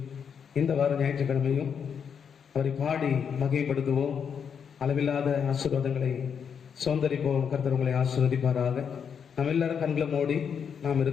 இந்த வார ஞாயிற்றுக்கிழமையும் அவரை பாடி மகிமைப்படுத்துவோம். அளவில்லாத ஆசீர்வாதங்களை சுதந்தரிப்போம். கர்த்தர் உங்களை ஆசீர்வதிப்பாராக. நாம் எல்லாரும் கண்களை மூடி நாம்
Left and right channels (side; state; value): right; quieter; 7.1 dB